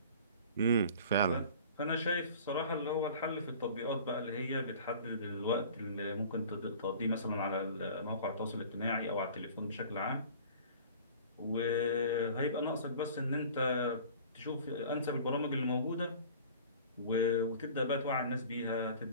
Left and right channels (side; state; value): both; inverted; correlation -0.44